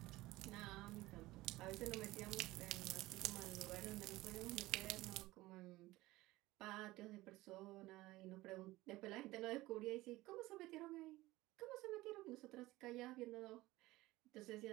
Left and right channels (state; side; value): quieter; left; 18.6 dB